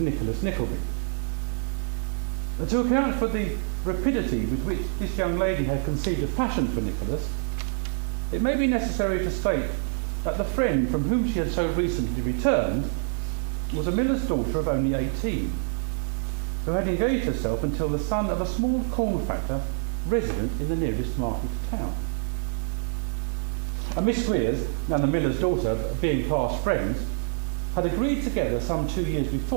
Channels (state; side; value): silent; left; 61 dB below the other